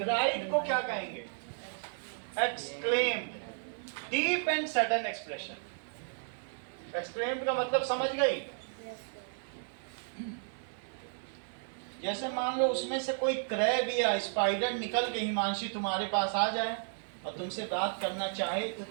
को क्या कहेंगे? Exclaimed. Deep and sudden expression. Exclaimed का मतलब समझ गई? जैसे मान लो उसमें से कोई क्रैब या स्पाइडर निकल के हिमांशी तुम्हारे पास आ जाए और तुमसे बात करना चाहे तो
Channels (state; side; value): silent; left; 55 dB below the other